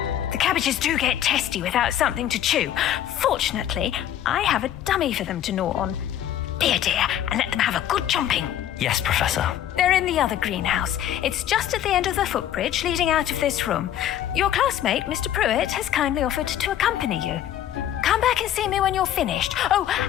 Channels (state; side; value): quieter; right; 11.2 dB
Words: The cabbages do get testy without something to chew. Fortunately, I have a dummy for them to gnaw on. Be a dear and let them have a good chomping. Yes, Professor. They're in the other greenhouse. It's just at the end of the footbridge leading out of this room. Your classmate, Mr. Pruitt, has kindly offered to accompany you. Come back and see me when you're finished. Oh,